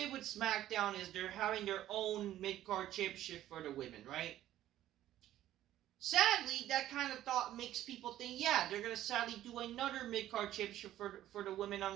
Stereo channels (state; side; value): quieter; left; 13.2 dB